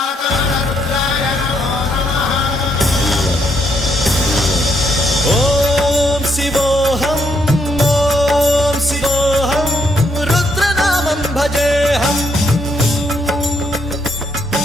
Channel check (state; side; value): normal; both; correlation 0.74